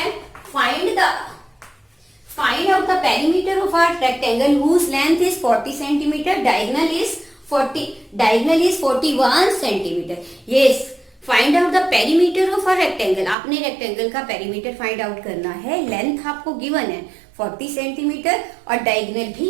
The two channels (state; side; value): drops out; left; at 13.4 s